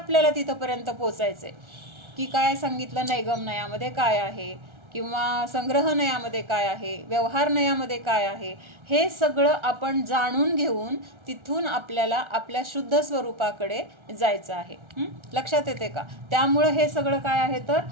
तिथपर्यंत पोचायचंय की काय सांगितलं, नैगम नयामध्ये काय आहे किंवा संग्रह नयामध्ये काय आहे, व्यवहार नयामध्ये काय आहे, हे सगळं आपण जाणून घेऊन तिथून आपल्याला आपल्या शुद्ध स्वरूपाकडे जायचं आहे. लक्षात येते का? त्यामुळं हे सगळं काय आहे तर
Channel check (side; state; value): left; late; 1.4 ms